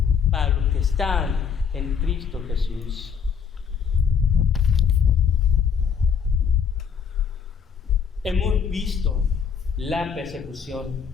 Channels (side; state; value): right; quieter; 6.9 dB